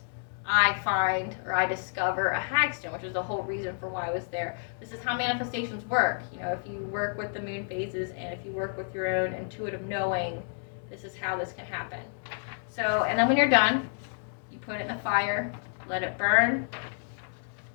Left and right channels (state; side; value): silent; right; digital silence